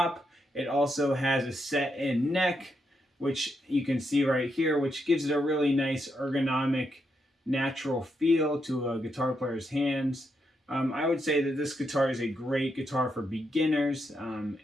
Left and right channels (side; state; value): both; normal; correlation 0.81